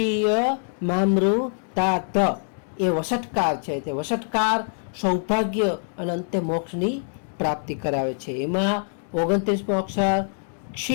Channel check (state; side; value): silent; right; 62 dB below the other